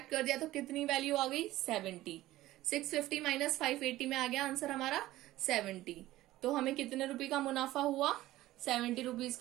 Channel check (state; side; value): quieter; left; 16.0 dB